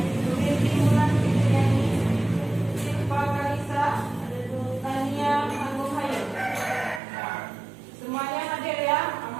Rinti Mulan Fitriani, Silva Kalisa, Tania Agung Hayu. Semuanya hadir ya,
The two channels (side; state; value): left; drops out; at 7.0 s